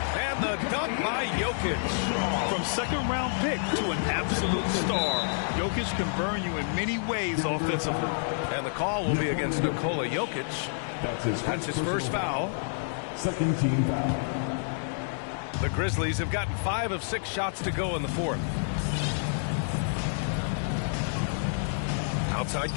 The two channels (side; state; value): right; silent; digital silence